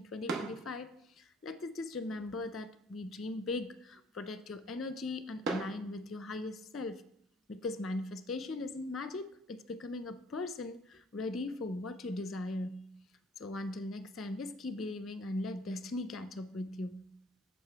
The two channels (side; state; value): both; normal; correlation 0.58